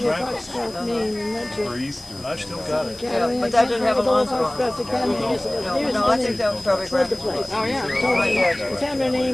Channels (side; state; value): left; noise; hiss, 21 dB below the sound